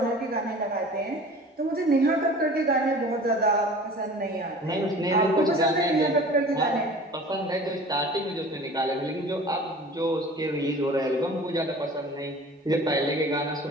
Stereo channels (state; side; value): normal; both; correlation 0.43